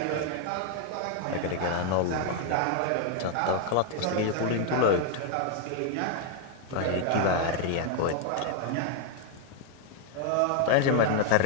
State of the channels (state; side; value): different; both; correlation 0.00